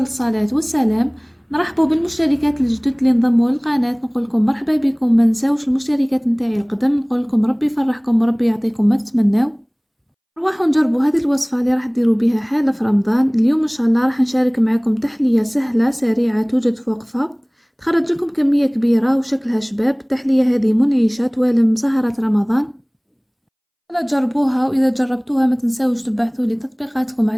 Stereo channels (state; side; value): identical; both; correlation 1.00